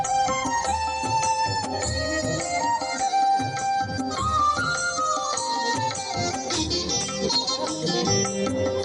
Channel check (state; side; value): identical; both; correlation 1.00